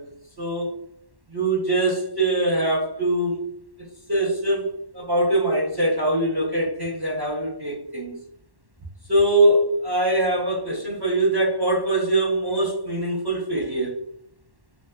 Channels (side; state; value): left; late; 1.1 ms